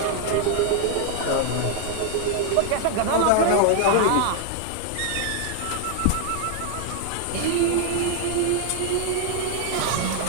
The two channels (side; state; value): both; different; correlation 0.00